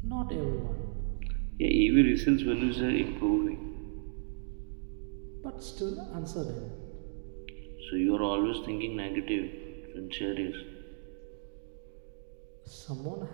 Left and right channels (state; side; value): silent; left; digital silence